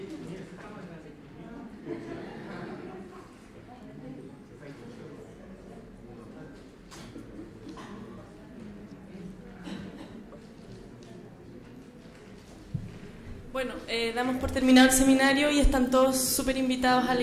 Bueno, damos por terminado el seminario y están todos súper invitados a la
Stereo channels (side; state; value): both; identical; correlation 1.00